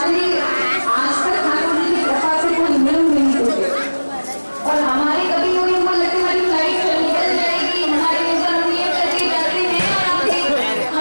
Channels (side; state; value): both; inverted; correlation -1.00